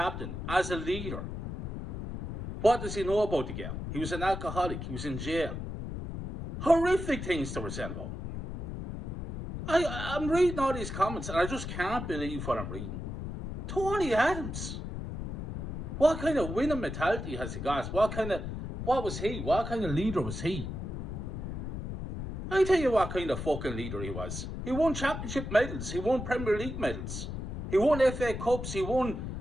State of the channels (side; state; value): left; noise; rumble, 6 dB below the sound